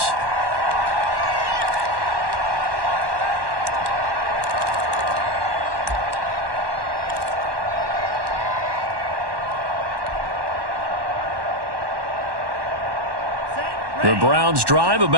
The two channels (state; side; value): late; left; 1.1 ms